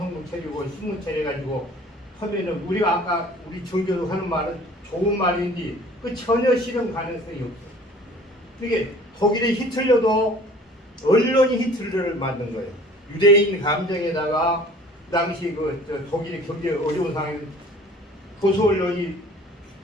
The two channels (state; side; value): normal; both; correlation 0.49